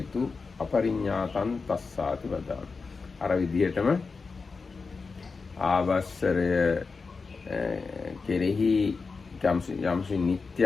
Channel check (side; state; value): right; quieter; 4.5 dB